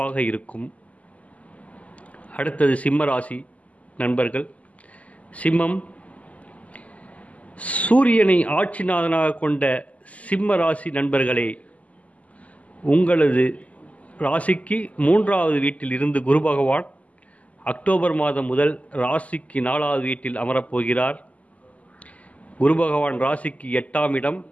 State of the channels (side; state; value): right; late; 0.071 ms